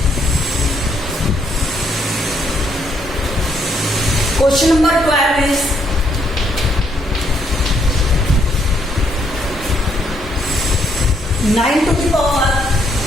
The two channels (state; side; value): normal; both; correlation 0.72